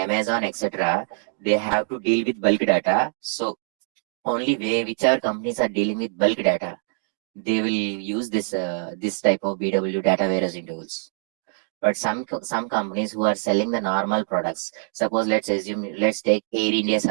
etc., they have to deal with bulk data. So only way whichever companies are dealing with bulk data, they will use this type of BW data warehousing tools. But some companies who are selling the normal products, suppose let's take Air India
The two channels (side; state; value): left; silent; 63 dB below the other